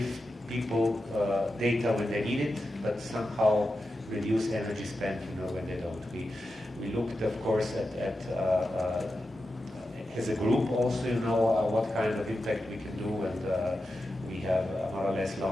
people data when they need it, but somehow reduce energy spent, you know, when they don't. We looked, of course, at as a group also, you know, what kind of impact we can do, and we have more or less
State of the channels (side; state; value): both; normal; correlation 0.90